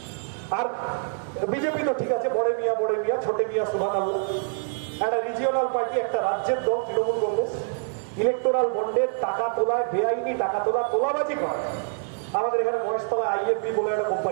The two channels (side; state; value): left; silent; 61 dB below the other